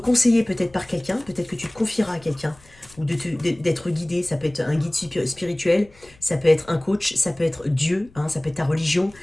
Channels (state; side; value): noise; left; rumble, 26 dB below the sound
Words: peut-être par quelqu'un, peut-être que tu te confieras à quelqu'un, ou d'être guidé, ça peut être un guide spirituel, ça peut être un coach, ça peut être Dieu, hein, ça peut être ta religion,